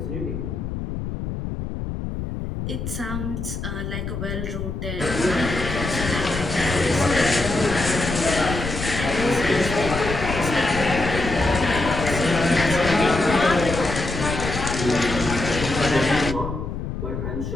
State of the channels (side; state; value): left; noise; rumble, 5 dB below the sound